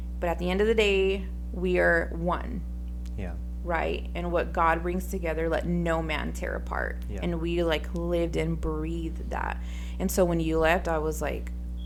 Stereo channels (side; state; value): both; identical; correlation 1.00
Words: But at the end of the day, we are one, Yeah. right? And what God brings together, let no man tear apart. Yeah. And we like lived and breathed that. And so when you left, I was like,